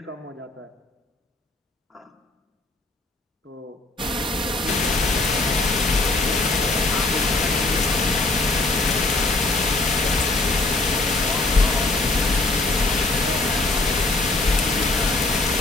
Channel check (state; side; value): quieter; right; 3.1 dB